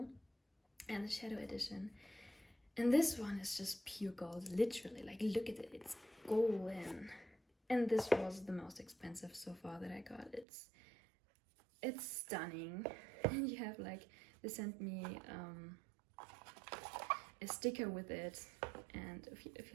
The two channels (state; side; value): drops out; left; at 10.5 s